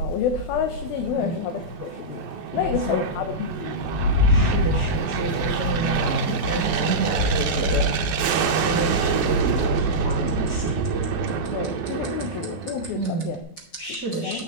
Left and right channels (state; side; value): late; right; 12 ms